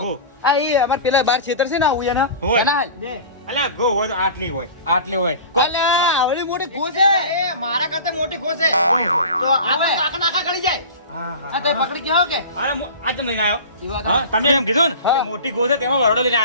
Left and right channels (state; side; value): inverted; both; correlation -0.35